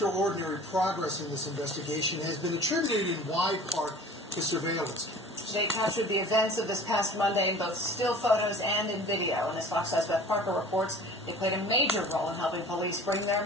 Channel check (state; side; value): normal; both; correlation 0.43